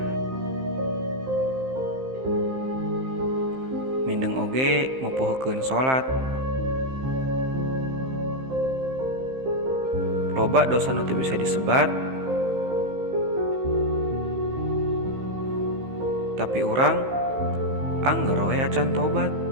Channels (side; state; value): left; late; 15 ms